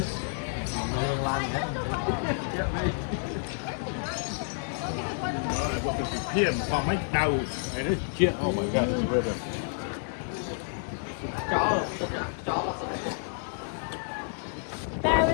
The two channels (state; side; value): silent; right; digital silence